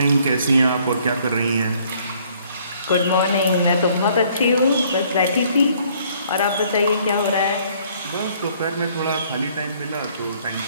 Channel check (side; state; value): both; inverted; correlation -0.62